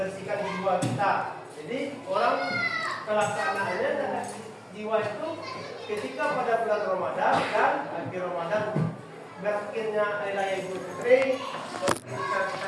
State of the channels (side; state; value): both; identical; correlation 1.00